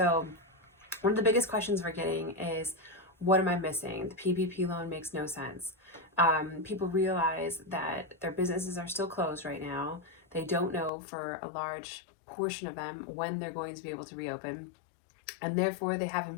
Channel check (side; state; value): right; drops out; at 10.9 s